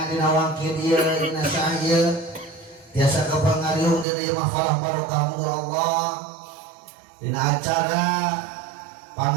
dina wangkid ieu dina saah ieu tiasa kapangariung dina ieu mahfalah barokah muga Allah dina acara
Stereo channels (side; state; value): left; drops out; at 4.0 s